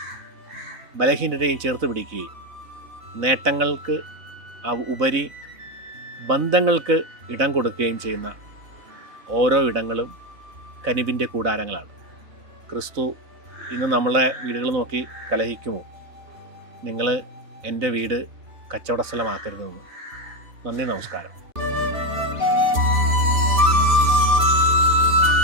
ബലഹീനരെയും ചേർത്ത് പിടിക്കുകയും നേട്ടങ്ങൾക്ക് ഉപരി ബന്ധങ്ങൾക്ക് ഇടം കൊടുക്കുകയും ചെയ്യുന്ന ഓരോ ഇടങ്ങളും കനിവിൻ്റെ കൂടാരങ്ങളാണ്. ക്രിസ്തു ഇന്ന് നമ്മളെ വീടുകൾ നോക്കി കലഹിക്കുമോ? നിങ്ങൾ എൻ്റെ വീട് കച്ചവട സ്ഥലമാക്കരുതെന്ന്. നന്ദി, നമസ്കാരം.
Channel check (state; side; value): late; left; 3.9 ms